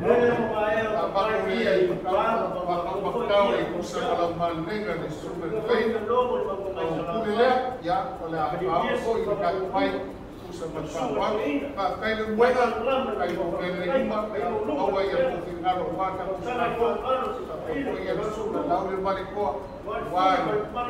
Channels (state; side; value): identical; both; correlation 1.00